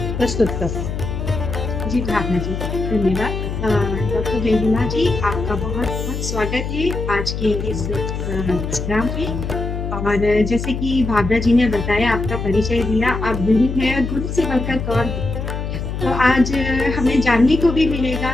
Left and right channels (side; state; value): left; noise; hum, 4 dB below the sound